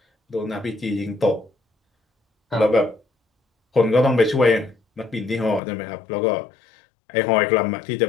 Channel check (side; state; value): right; drops out; at 5.6 s